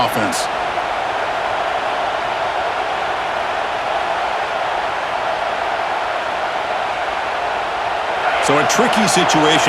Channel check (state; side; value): identical; both; correlation 1.00